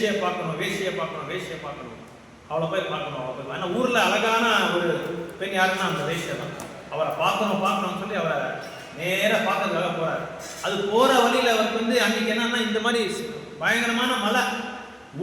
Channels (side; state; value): both; identical; correlation 1.00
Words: பார்க்கணும், அவளை போய் பார்க்கணும். ஏன்னா ஊர்ல அழகான ஒரு பெண் யாருன்னா அந்த வேஷ்யா தான். அவரை பார்க்கணும்னு சொல்லி அவரை நேர பார்க்கறதுக்காக போறாரு. அது போற வழியில அவருக்கு வந்து அன்னைக்கு என்னன்னா இந்த மாதிரி பயங்கரமான மழை,